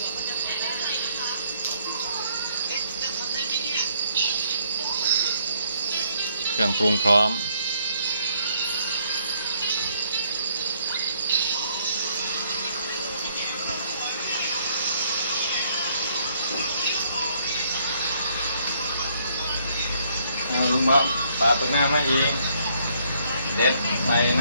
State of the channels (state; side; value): inverted; both; correlation -0.68